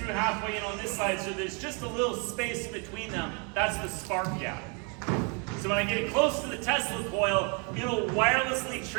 halfway in on this side, so there's just a little space between them. That's the spark gap. So when I get it close to the Tesla coil, it'll wirelessly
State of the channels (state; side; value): quieter; left; 35.0 dB